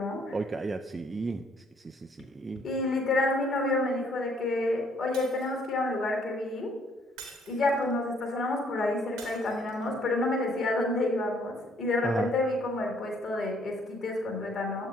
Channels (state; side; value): normal; both; correlation 0.65